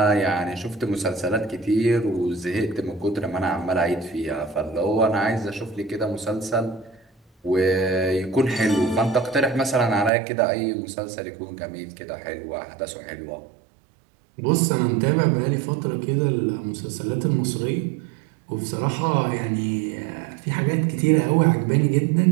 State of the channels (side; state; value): left; drops out; at 10.1 s